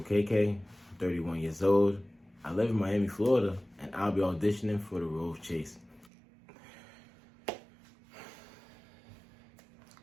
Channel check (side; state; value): left; drops out; at 6.1 s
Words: OKEKE. I'm 31 years old. I live in Miami, Florida, and I'll be auditioning for the role of Chase.